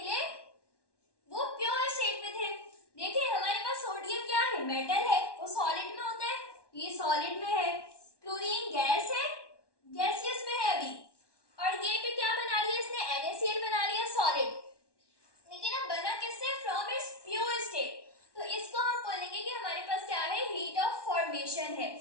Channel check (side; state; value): right; late; 1.1 ms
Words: वो प्योर स्टेट में थे। देखिए, हमारे पास सोडियम क्या है, मेटल है, वो सॉलिड में होता है, ये सॉलिड में है। क्लोरीन गैस है, गैसियस में है अभी, और ये पे क्या बना लिया इसने, NaCl बना लिया सॉलिड। लेकिन अब बना किससे, फ्रॉम इट्स प्योर स्टेट। तो इसको हम बोलेंगे कि हमारे पास क्या है, हीट ऑफ फॉर्मेशन है।